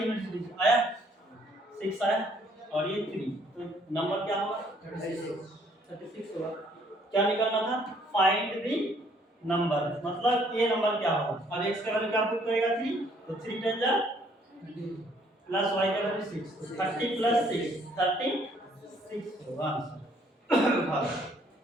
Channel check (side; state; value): both; normal; correlation 0.64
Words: डिजिट, आया 6 आया और ये 3, तो नंबर क्या होगा? 36 होगा। क्या निकालना था? फाइंड द नंबर, मतलब ये नंबर क्या होगा? अब x का वैल्यू क्या पुट करेगा? 3, तो 3 10 जा प्लस y का वैल्यू 6, 30 प्लस 6 36 होगा answer.